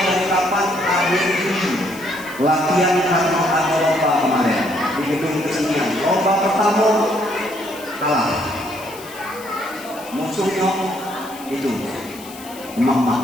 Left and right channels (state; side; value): noise; left; hiss, 17 dB below the sound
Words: dari kapan? Akhir Juni. Latihan karena ada lomba kemarin di gedung kesenian. Lomba pertama kalah. Musuhnya itu